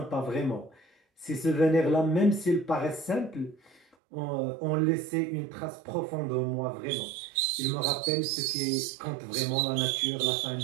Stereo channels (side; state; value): left; drops out; at 4.0 s